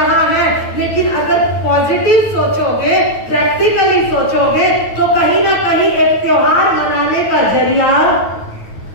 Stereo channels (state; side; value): late; right; 9.2 ms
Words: है। लेकिन अगर पॉजिटिव सोचोगे, प्रैक्टिकली सोचोगे तो कहीं ना कहीं एक त्योहार मनाने का जरिया